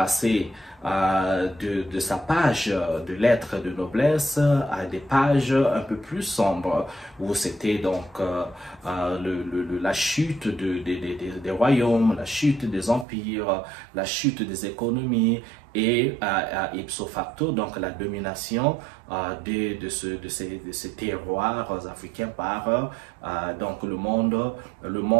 de sa page de lettres de noblesse à des pages un peu plus sombres, où c'était donc la chute des royaumes, la chute des empires, la chute des économies, et ipso facto donc la domination de ces terroirs africains par donc le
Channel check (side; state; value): left; drops out; at 13.1 s